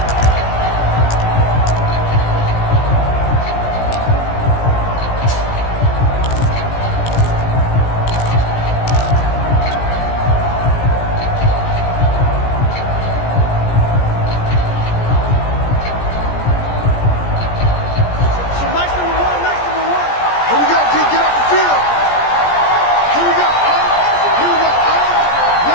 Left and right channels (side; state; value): right; late; 17 ms